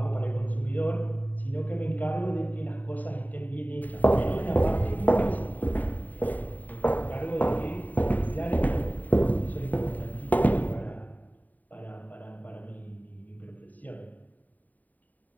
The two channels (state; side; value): late; right; 0.080 ms